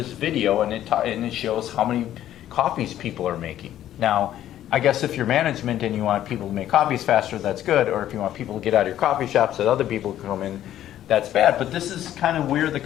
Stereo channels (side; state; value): right; quieter; 12.1 dB